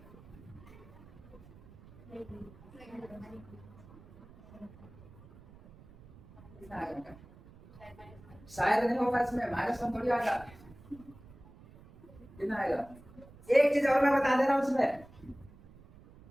शायद नहीं होगा इसमें माइनस वन थोड़ी आएगा कितना आएगा एक चीज और मैं बता दे रहा हूं उसमें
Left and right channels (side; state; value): right; noise; rumble, 21 dB below the sound